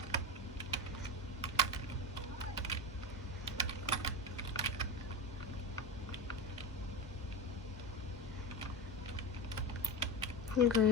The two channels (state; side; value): normal; both; correlation 0.20